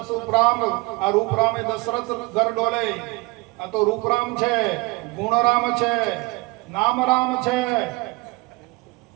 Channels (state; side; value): quieter; left; 24.6 dB